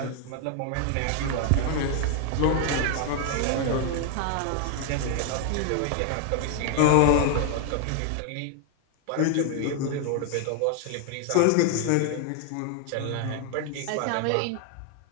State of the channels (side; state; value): both; different; correlation 0.00